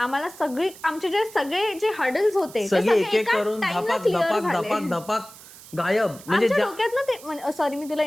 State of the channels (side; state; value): right; noise; hiss, 19 dB below the sound